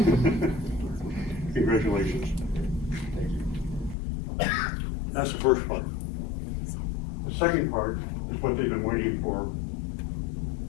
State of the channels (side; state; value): right; drops out; at 4.0 s